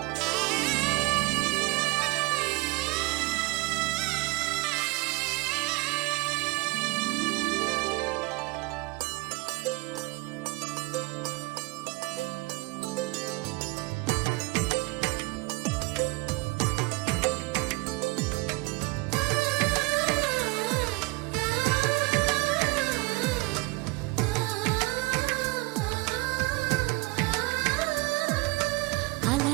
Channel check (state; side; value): quieter; left; 24.4 dB